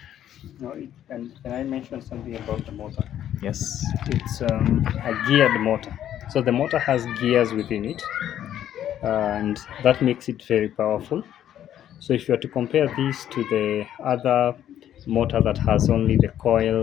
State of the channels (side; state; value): right; quieter; 11.0 dB